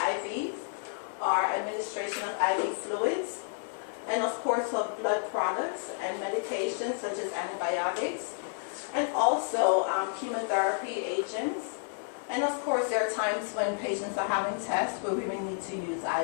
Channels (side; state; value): right; silent; digital silence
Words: are administration of IV fluids, and of course of blood products and medications such as antibiotics, and also chemotherapy agents. And of course there are times when patients are having tests where we may need to use